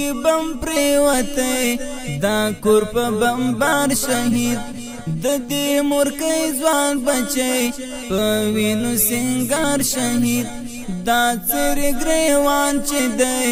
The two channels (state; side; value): identical; both; correlation 1.00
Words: بم پریوتے دا کور پا بمبار شہید دی مرکی زوان بچے پوینو سنگار شہید دا سر گریوان چی